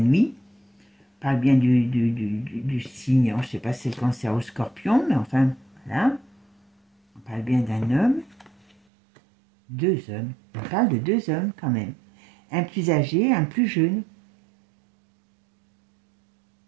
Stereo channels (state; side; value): drops out; left; at 8.8 s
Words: on parle bien du signe, je ne sais pas si c'est le Cancer ou Scorpion, mais enfin, voilà. On parle bien d'un homme, 2 hommes, on parle de 2 hommes quand même, un plus âgé, un plus jeune.